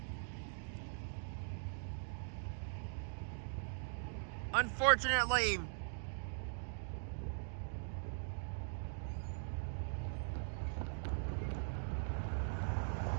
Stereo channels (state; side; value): silent; left; digital silence